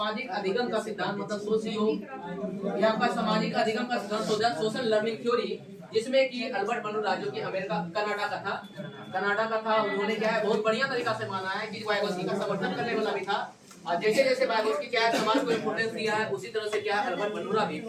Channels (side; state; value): both; identical; correlation 1.00